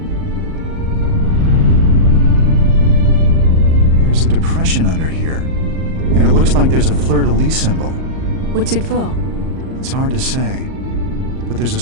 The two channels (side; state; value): left; late; 38 ms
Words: There's a depression under here, and it looks like there's a fleur-de-lis symbol. What's it for? It's hard to say, but there's a